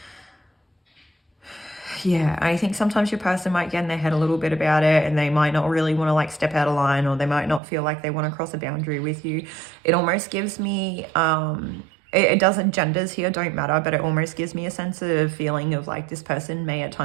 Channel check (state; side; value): drops out; left; at 7.6 s